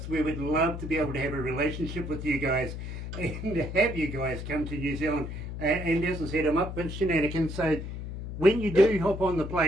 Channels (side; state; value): left; noise; hum, 7 dB below the sound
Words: We would love to be able to have a relationship with you guys and have you guys come to New Zealand. And as I said, I'm up for shenanigans. So when you do hop on the